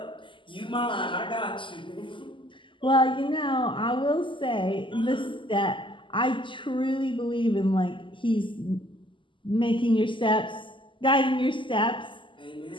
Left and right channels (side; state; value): right; late; 0.25 ms